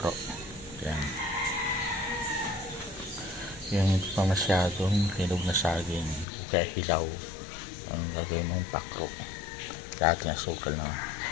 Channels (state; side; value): drops out; right; at 6.2 s